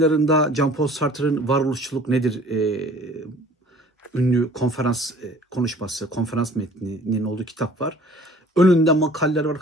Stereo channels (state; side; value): normal; both; correlation 0.51